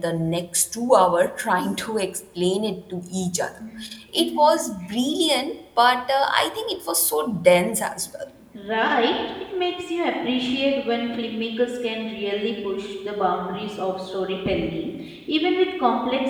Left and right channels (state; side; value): identical; both; correlation 1.00